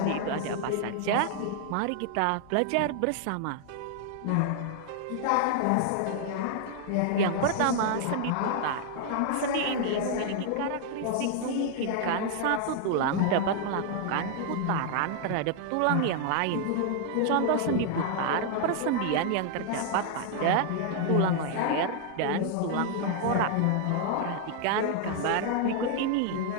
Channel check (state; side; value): different; both; correlation 0.00